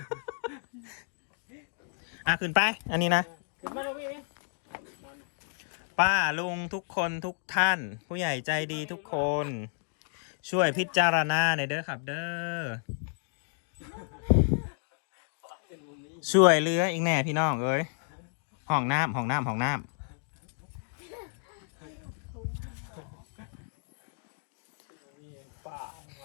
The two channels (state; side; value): silent; right; 55 dB below the other